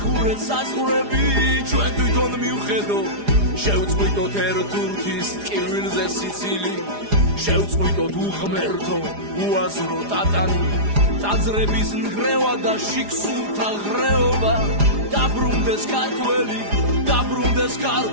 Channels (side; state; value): left; late; 4.9 ms